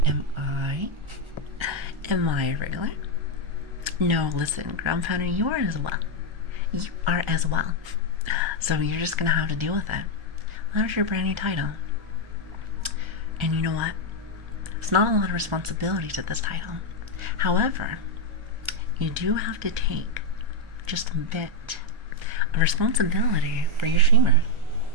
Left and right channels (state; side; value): late; left; 1.3 ms